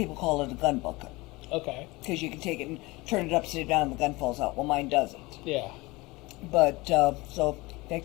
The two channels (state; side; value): quieter; right; 22.6 dB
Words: call it a gun bucket Okay. because you can take it and turn it upside down and the gun falls out. Well, mine doesn't. Yeah. But so in